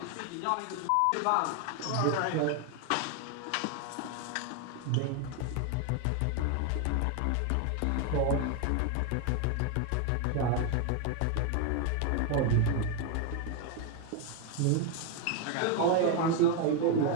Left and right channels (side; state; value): both; different; correlation 0.01